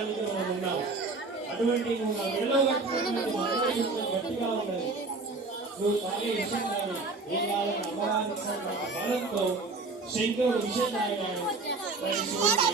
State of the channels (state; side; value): quieter; left; 3.6 dB